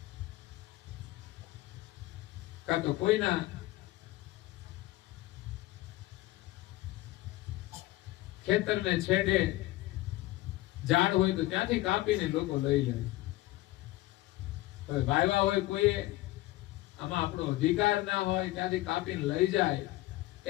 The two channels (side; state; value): right; quieter; 17.5 dB